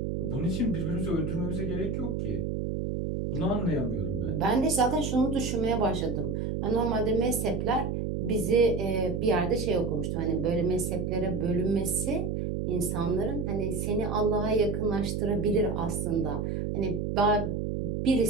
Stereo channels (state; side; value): noise; right; hum, 1 dB below the sound